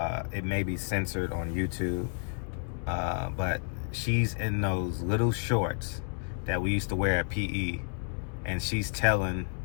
It may be censored on YouTube. But she's in those little shorts that we used to wear at PE, and she's telling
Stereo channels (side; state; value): right; silent; 57 dB below the other